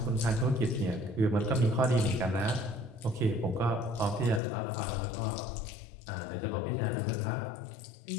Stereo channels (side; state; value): right; drops out; at 4.4 s